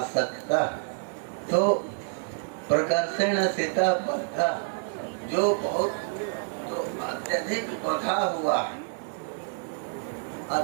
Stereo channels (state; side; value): silent; left; digital silence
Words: तो प्रकर्षण सिता बद्धा, जो बहुत तो अत्यधिक बधा हुआ है,